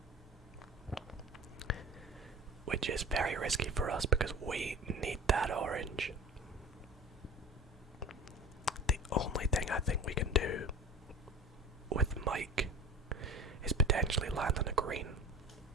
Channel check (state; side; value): normal; both; correlation 0.35